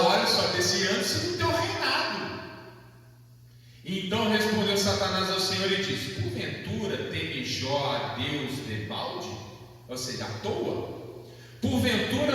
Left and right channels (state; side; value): identical; both; correlation 1.00